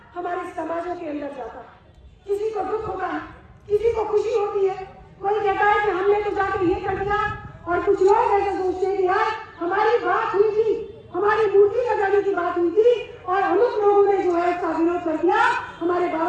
हमारे समाजों के अंदर जाता है। किसी को दुख होता है, किसी को खुशी होती है। कोई कहता है कि हमने तो जाकर ये कर दिया, और कुछ लोग ऐसे सोचते हैं कि यार हमारी बात हुई थी, हमारी मूर्ति लगाने की बात हुई थी और अमुक लोगों ने जो है इसका विरोध कर दिया, हमारे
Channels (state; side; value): identical; both; correlation 1.00